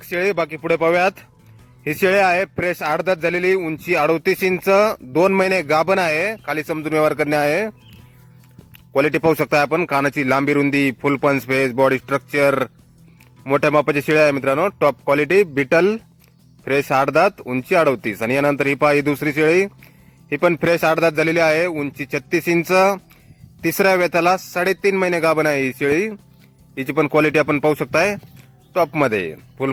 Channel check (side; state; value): both; identical; correlation 1.00